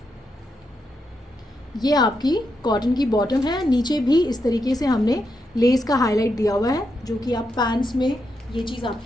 ये आपकी कॉटन की बॉटम है. नीचे भी इस तरीके से हमने लेस का हाईलाइट दिया हुआ है जो कि आप पैंट्स में ये चीज़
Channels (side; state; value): both; normal; correlation 0.83